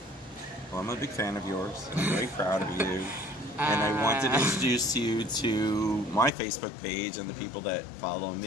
Well, I'm a big fan of yours. I'm very proud of you. And I wanted to introduce you to my Facebook page and the people that follow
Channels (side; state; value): right; drops out; at 6.3 s